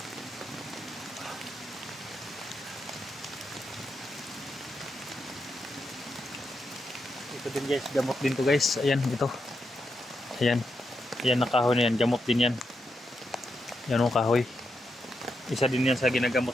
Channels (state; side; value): normal; both; correlation 0.84